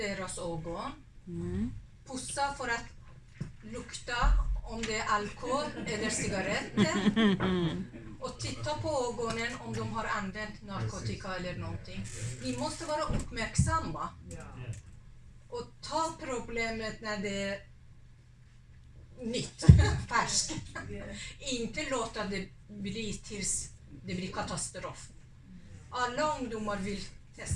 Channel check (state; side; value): identical; both; correlation 1.00